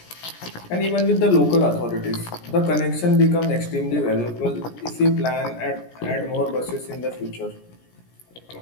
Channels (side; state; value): right; late; 17 ms